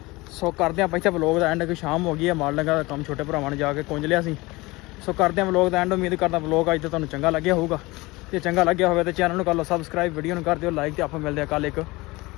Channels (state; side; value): quieter; right; 22.1 dB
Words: ਸੋ ਕਰਦੇ ਆ ਪਹਿਲਾਂ ਵਲੌਗ ਦਾ ਐਂਡ। ਕਿ ਸ਼ਾਮ ਹੋ ਗਈ ਹੈ, ਮਾਲ ਲੰਗਾ ਦਾ ਕੰਮ ਛੋਟੇ ਭਰਾਵਾਂ ਨੇ ਜਾ ਕੇ ਕੁੰਝ ਲਿਆ ਸੀ। ਸੋ ਕਰਦੇ ਆ ਵਲੌਗ ਦਾ ਐਂਡ। ਉਮੀਦ ਕਰਦਾ ਵਲੌਗ ਅੱਜ ਤਾਂ ਤੁਹਾਨੂੰ ਚੰਗਾ ਲੱਗਿਆ ਹੋਊਗਾ। ਜੇ ਚੰਗਾ ਲੱਗਿਆ ਹੋਵੇ ਤਾਂ ਚੈਨਲ ਨੂੰ ਕਰ ਲਓ ਸਬਸਕ੍ਰਾਈਬ, ਵੀਡੀਓ ਨੂੰ ਕਰ ਦਿਓ ਲਾਈਕ। ਤੇ ਆਪਾਂ ਮਿਲਦੇ ਆ ਕੱਲ੍ਹ ਇੱਕ